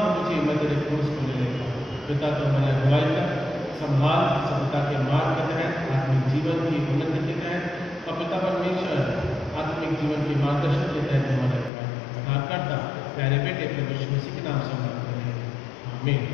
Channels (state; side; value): drops out; right; at 11.7 s